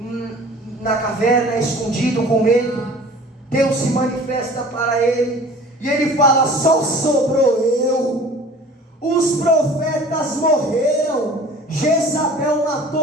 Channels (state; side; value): normal; both; correlation 0.45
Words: na caverna, escondido com medo. Deus se manifesta para ele, e ele fala: só sobrou eu, os profetas morreram, Jezabel